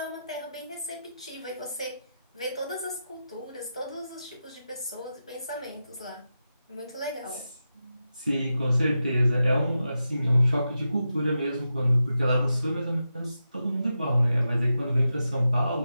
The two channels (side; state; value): both; inverted; correlation -0.89